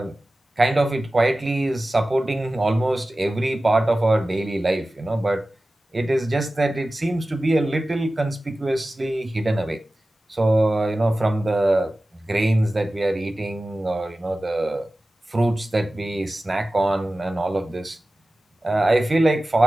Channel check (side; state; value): both; normal; correlation 0.96